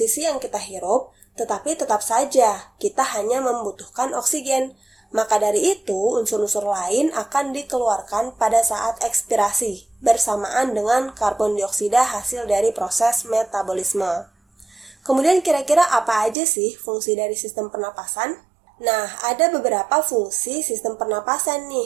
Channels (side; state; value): left; drops out; at 16.4 s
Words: yang kita hirup, tetapi tetap saja kita hanya membutuhkan oksigen. Maka dari itu, unsur-unsur lain akan dikeluarkan pada saat ekspirasi, bersamaan dengan karbon dioksida hasil dari proses metabolisme. Kemudian kira-kira apa aja sih fungsi dari sistem pernapasan? Nah, ada beberapa fungsi sistem pernapasan